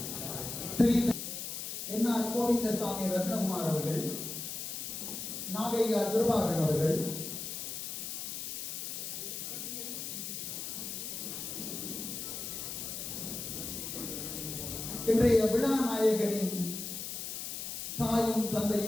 என்ஆர் கோவிந்தசாமி ரத்னகுமார் அவர்கள், நாகையா துர்பாகன் அவர்கள், இன்றைய விழா நாயகனின் தாயும்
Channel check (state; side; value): noise; left; hiss, 5 dB below the sound